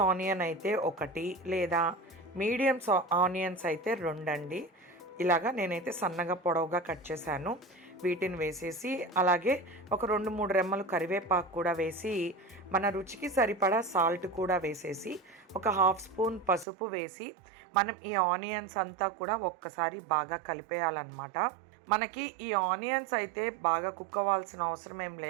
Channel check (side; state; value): left; drops out; at 16.7 s